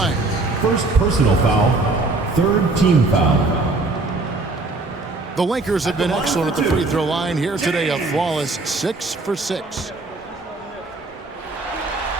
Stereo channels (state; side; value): quieter; left; 3.3 dB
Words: First personal foul, third team foul. The Lakers have been excellent at the free throw line here today, a flawless 6 for 6.